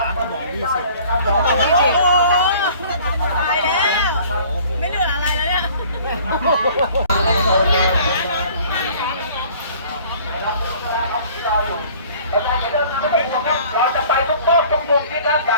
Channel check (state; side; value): inverted; both; correlation -0.51